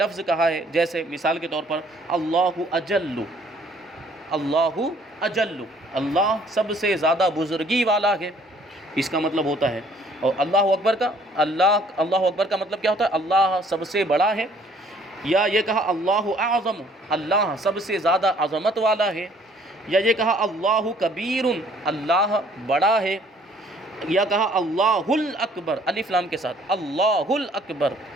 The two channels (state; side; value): normal; both; correlation 0.59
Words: کہا ہے، جیسے مثال کے طور پر اللہ اجل، اللہ اجل، اللہ سب سے زیادہ بزرگی والا ہے، اس کا مطلب ہوتا ہے. اور اللہ اکبر کا مطلب کیا ہوتا ہے؟ اللہ سب سے بڑا ہے. یا یہ کہا اللہ اعظم، اللہ سب سے زیادہ عظمت والا ہے. یا یہ کہا اللہ کبیر، اللہ بڑا ہے. یا کہا اللہ الاکبر، الف لام کے ساتھ، اللہ الاکبر،